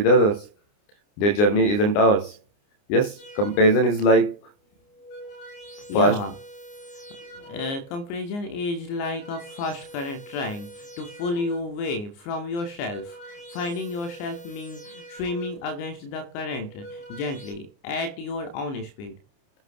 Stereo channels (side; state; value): right; late; 29 ms